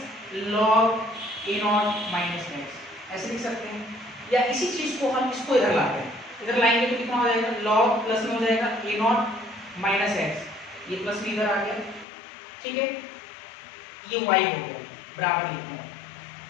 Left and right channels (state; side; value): drops out; right; at 12.1 s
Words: log A0 minus x ऐसे लिख सकते हैं। या इसी चीज को हम इसको इधर लाते हैं, इधर लाएंगे तो कितना हो जाएगा, log प्लस में हो जाएगा A0 माइनस x, ये प्लस में इधर आ गया, ठीक है, ये y हो गया बराबर लिखना है,